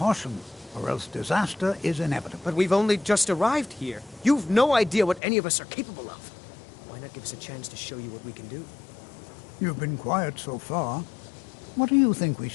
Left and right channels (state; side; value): drops out; right; at 5.2 s